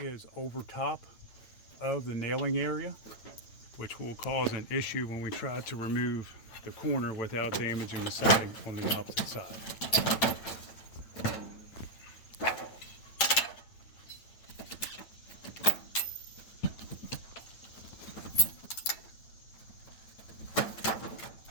over top of the nailing area, which will cause an issue when we try to remove the corner without damaging the siding on the opposite side.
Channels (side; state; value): right; late; 9.1 ms